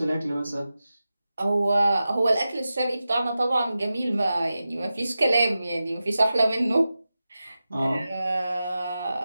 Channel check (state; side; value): inverted; both; correlation -0.93